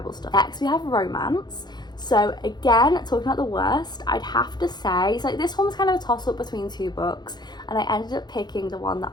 stuff. Next we have romance. So again, talking about the worst, I'd have to say, so this one was kind of a toss-up between two books, and I ended up picking the one that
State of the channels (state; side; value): late; right; 0.21 ms